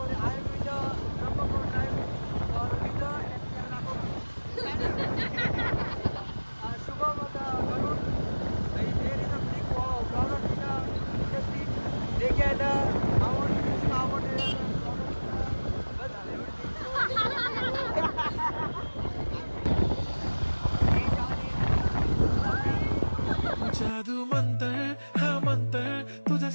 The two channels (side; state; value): both; inverted; correlation -1.00